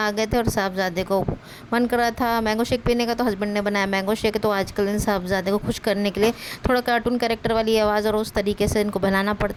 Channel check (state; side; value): identical; both; correlation 1.00